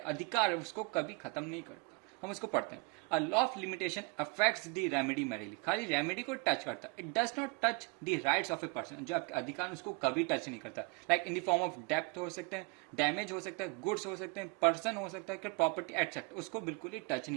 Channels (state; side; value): quieter; left; 29.9 dB